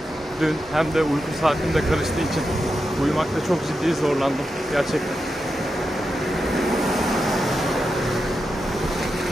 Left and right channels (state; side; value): normal; both; correlation 0.88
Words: dün hem de uyku saatim de karıştığı için uyumakta çok ciddi zorlandım gerçekten.